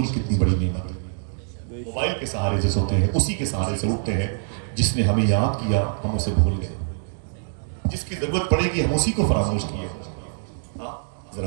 کتنی بڑی نعمت ہے۔ موبائل کے سہارے سے سوتے ہیں، اسی کے سہارے سے اٹھتے ہیں، جس نے ہمیں یاد کیا ہم اسے بھول گئے، جس کی ضرورت پڑے گی ہم اسی کو فراموش کیے۔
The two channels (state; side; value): silent; left; digital silence